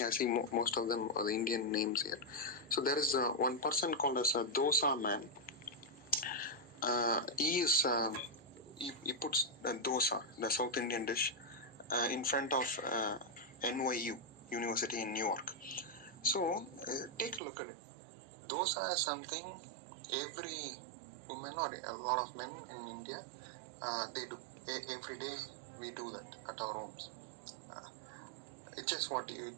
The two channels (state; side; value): drops out; left; at 17.4 s